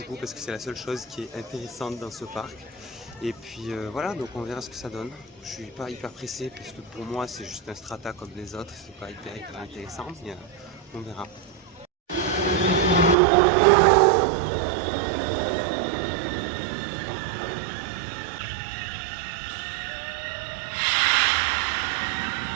coup parce que c'est la seule chose qui est intéressante dans ce parc. Et puis voilà, donc on verra ce que ça donne. Je suis pas hyper pressé parce que pour moi c'est juste un strata comme les autres, c'est pas hyper intéressant, mais on verra.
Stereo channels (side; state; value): left; drops out; at 13.2 s